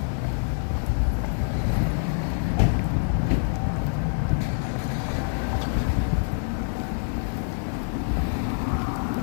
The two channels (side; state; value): right; silent; digital silence